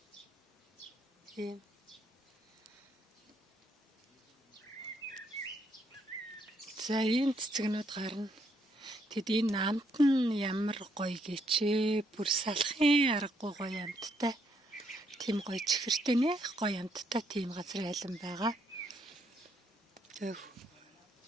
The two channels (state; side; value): normal; both; correlation 0.74